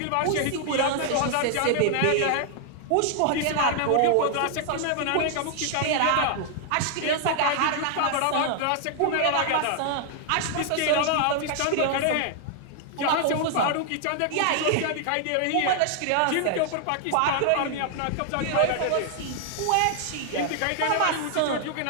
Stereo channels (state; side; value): different; both; correlation 0.00